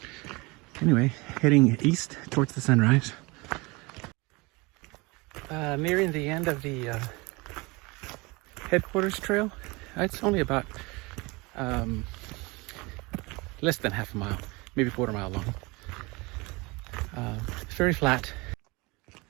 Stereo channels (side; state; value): left; quieter; 25.2 dB